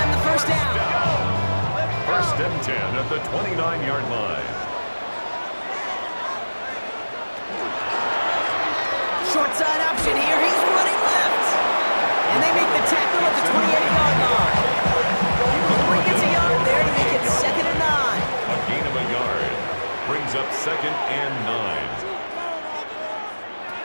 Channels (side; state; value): both; inverted; correlation -1.00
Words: the first down. First and 10 at the 29-yard line. Short side option here. He's running left. And they make the tackle at the 28-yard line. He gets a yard there to make it 2nd and 9. A gain of a yard. Brings up 2nd and 9.